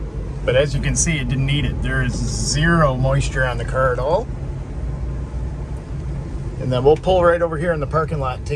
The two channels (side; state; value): both; identical; correlation 1.00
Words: But as you can see, it didn't need it. There is zero moisture on the car at all. And then we'll pull right over here in the parking lot and